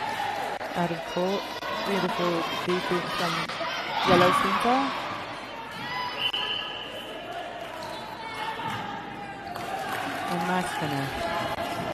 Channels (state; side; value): identical; both; correlation 1.00